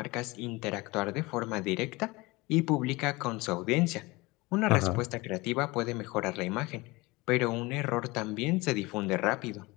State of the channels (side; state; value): right; quieter; 22.9 dB